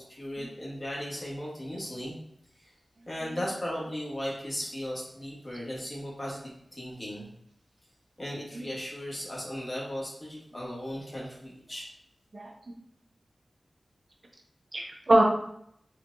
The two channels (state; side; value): normal; both; correlation 0.97